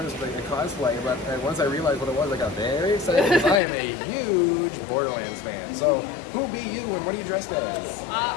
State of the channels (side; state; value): right; drops out; at 3.6 s